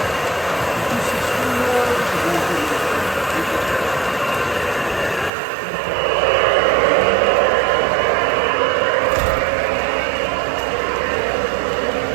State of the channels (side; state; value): left; drops out; at 5.3 s